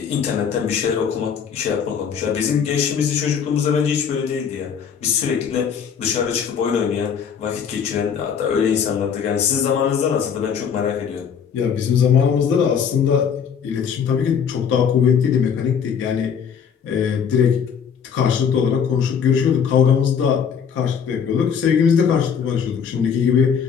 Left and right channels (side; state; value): right; quieter; 7.2 dB